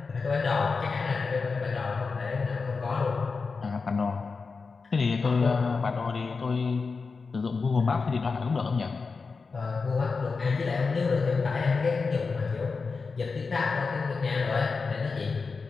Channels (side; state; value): right; quieter; 4.6 dB